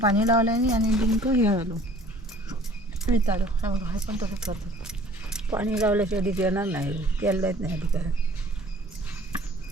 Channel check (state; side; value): normal; both; correlation 0.52